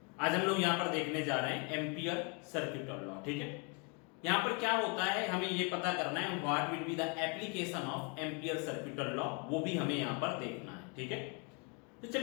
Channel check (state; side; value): quieter; right; 34.5 dB